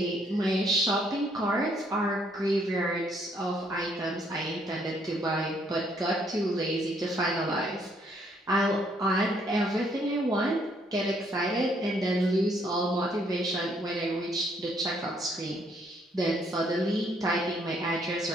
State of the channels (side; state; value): both; normal; correlation 0.69